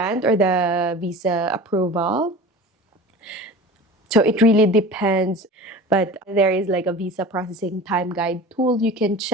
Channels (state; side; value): normal; both; correlation 0.36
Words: or the visa approval. So it really depends, but there is like a visa processing time guide tool you can